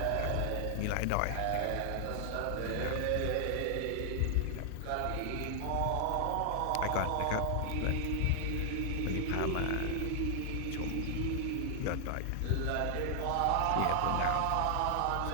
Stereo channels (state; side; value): different; both; correlation 0.00